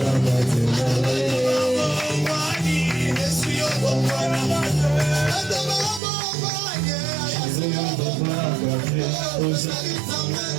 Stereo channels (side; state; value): left; drops out; at 6.0 s